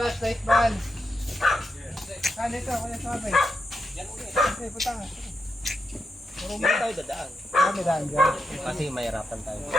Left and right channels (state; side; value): normal; both; correlation 0.85